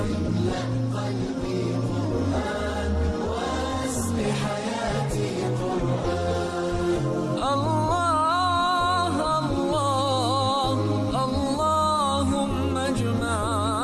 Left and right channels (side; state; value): both; identical; correlation 1.00